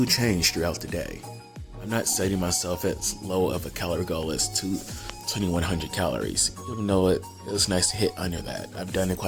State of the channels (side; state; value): both; identical; correlation 1.00